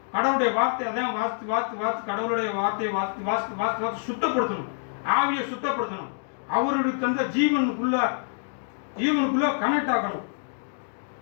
கடவுளுடைய வார்த்தை அதான் வாசித்து கடவுளுடைய வார்த்தையை வாசித்து சுத்தப்படுத்தணும். ஆவியை சுத்தப்படுத்தணும். அவருடைய தந்த ஜீவனுக்குள்ள கனெக்ட் ஆகணும்.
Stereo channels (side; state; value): right; silent; 61 dB below the other